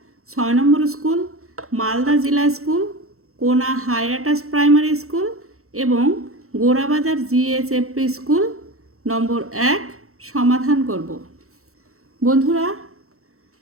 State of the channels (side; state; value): left; late; 0.63 ms